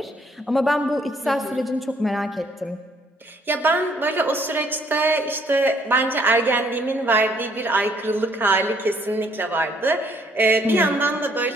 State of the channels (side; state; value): both; normal; correlation 0.65